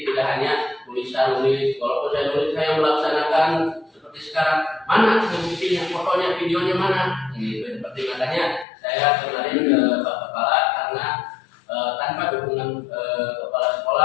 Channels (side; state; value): right; drops out; at 8.7 s